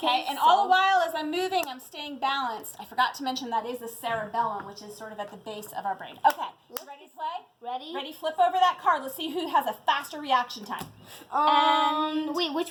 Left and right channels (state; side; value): identical; both; correlation 1.00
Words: and all the while as I'm moving, I'm staying balanced. I forgot to mention that is the cerebellum, which is sort of at the base of our brain. Okay, you ready to play? Ready? Ready, flip over that card. Let's see who has a faster reaction time. Wait,